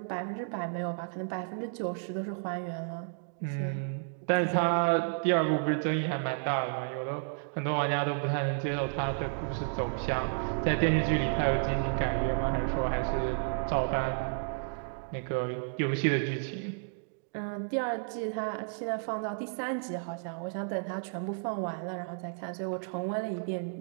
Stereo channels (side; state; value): left; silent; digital silence